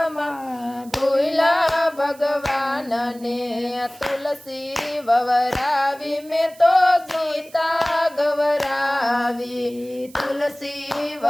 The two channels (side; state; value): right; noise; hiss, 23 dB below the sound